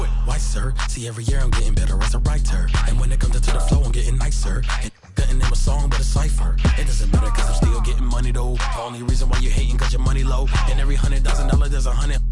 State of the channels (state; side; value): identical; both; correlation 1.00